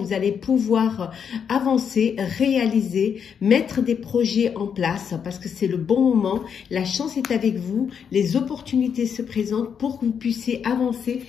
allez pouvoir avancer, réaliser, mettre des projets en place parce que c'est le bon moment. La chance est avec vous, les opportunités se présentent pour que vous puissiez avancer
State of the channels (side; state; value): right; quieter; 7.3 dB